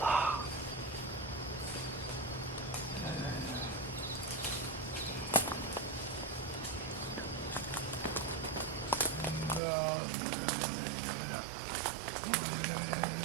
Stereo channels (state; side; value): drops out; left; at 9.6 s